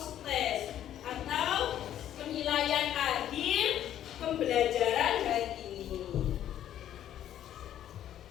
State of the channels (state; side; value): quieter; right; 11.2 dB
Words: test atau penilaian akhir pembelajaran hari ini.